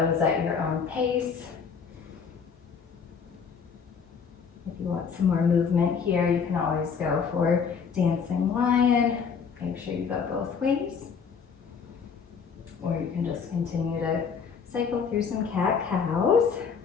at your own pace. If you want some more movement here, you can always go for dancing lion. Make sure you go both ways. Or you can just continue to cycle through some cat cows.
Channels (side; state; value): right; quieter; 6.2 dB